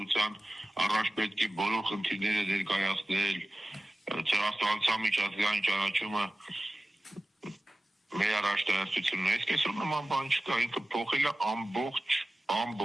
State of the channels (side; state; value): both; normal; correlation 0.96